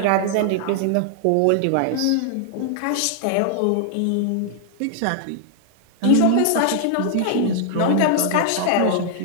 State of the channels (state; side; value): different; both; correlation -0.01